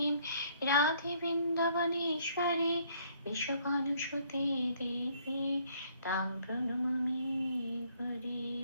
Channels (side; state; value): both; inverted; correlation -0.64